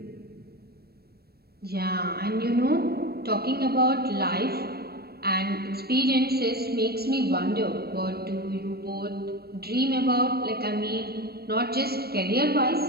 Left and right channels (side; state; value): left; late; 0.46 ms